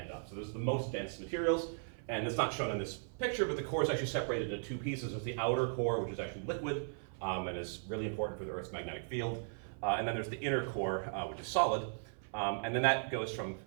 up. So those are the most dense materials, and it's not shown in this picture, but the core is actually separated into two pieces. There's the outer core, which is actually liquid, and is really important for the Earth's magnetic field. And then there's the inner core, which is solid. And then that goes from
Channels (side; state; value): left; silent; 53 dB below the other